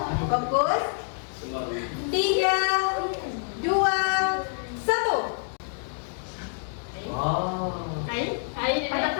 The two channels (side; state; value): right; silent; 60 dB below the other